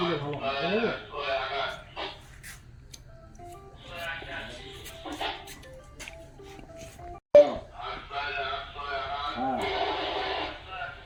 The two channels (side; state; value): both; identical; correlation 1.00